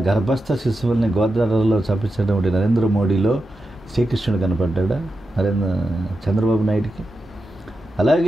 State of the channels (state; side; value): normal; both; correlation 0.90